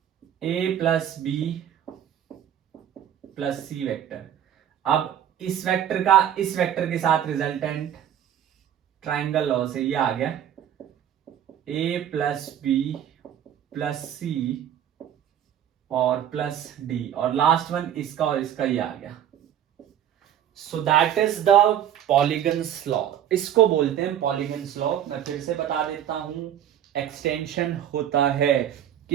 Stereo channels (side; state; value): left; quieter; 10.2 dB